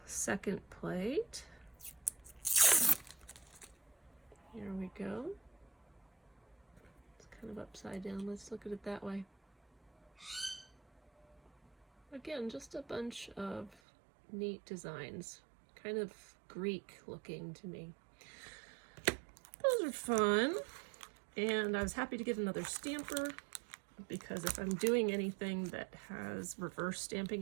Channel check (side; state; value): left; drops out; at 13.8 s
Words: second plate, here we go. It's kind of upside down. Let's look at it that way. Again, just a bunch of neat designs, kind of Greek looking to me. Those are fun. And I was happy to get another stamper because if I'm doing anything that has reverse stamping,